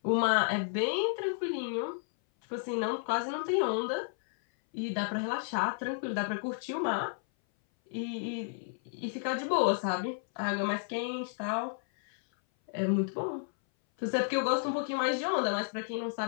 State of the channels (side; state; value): right; silent; 56 dB below the other